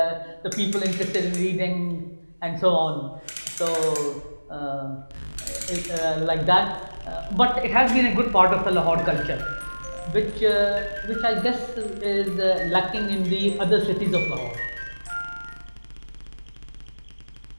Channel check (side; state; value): both; inverted; correlation -1.00